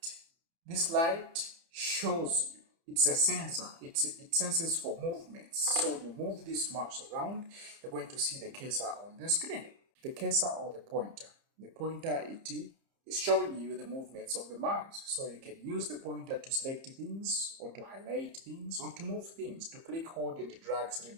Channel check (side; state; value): left; late; 30 ms